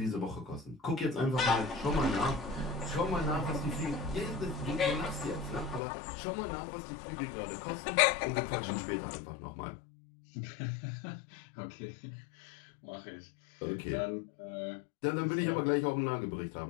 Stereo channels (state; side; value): drops out; right; at 5.8 s